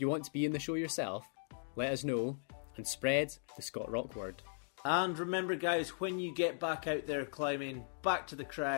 want to be in the show yourself, let us know and spread the Scott Rock word. And remember guys, when you get back out there climbing, back to the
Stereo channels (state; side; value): silent; right; digital silence